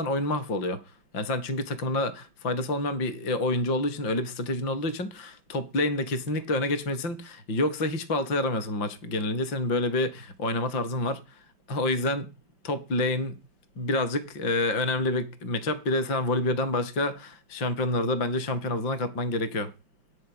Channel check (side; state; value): right; late; 5.7 ms